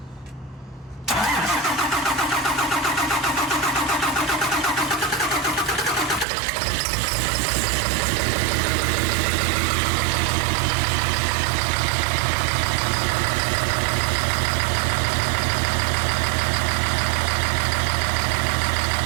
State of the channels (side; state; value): left; drops out; at 6.2 s